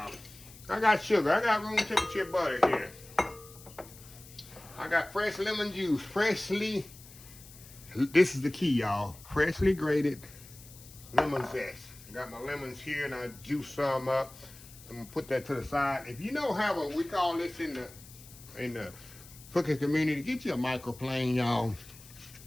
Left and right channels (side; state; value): left; noise; hiss, 20 dB below the sound